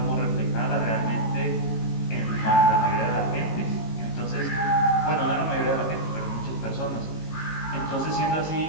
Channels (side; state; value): right; late; 18 ms